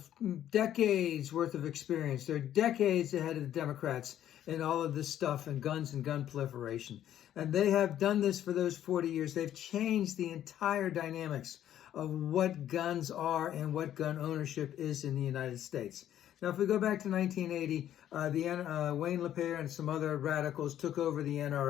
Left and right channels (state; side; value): quieter; right; 11.3 dB